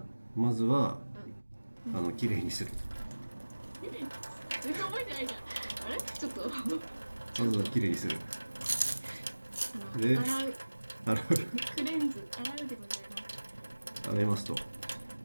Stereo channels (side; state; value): both; inverted; correlation -1.00